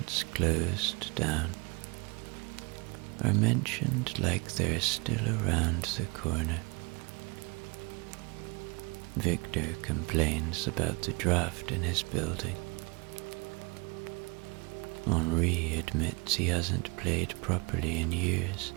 closed down are mentioned like they're still around the corner. Victor complains about the draft in his building. Henri admits he hasn't played properly in years.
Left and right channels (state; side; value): quieter; left; 28.6 dB